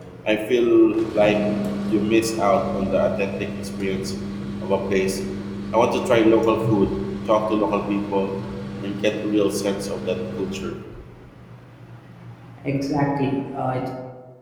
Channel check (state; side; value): identical; both; correlation 1.00